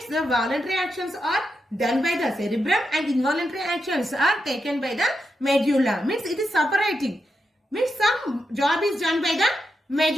the voluntary actions are done by the cerebrum and involuntary actions are taken by the medulla. Means it is separating. Means some job is done by the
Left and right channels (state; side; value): normal; both; correlation 0.86